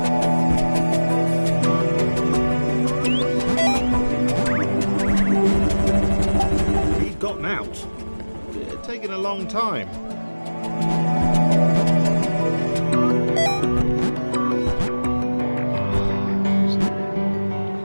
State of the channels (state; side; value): inverted; both; correlation -1.00